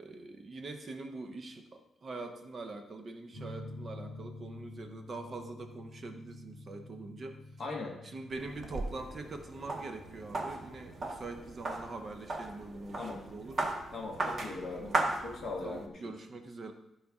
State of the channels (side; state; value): both; normal; correlation 0.82